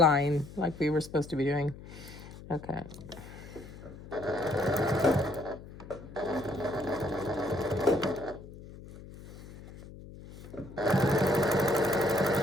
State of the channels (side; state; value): left; noise; hum, 16 dB below the sound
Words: like we were supposed to be doing. Okay.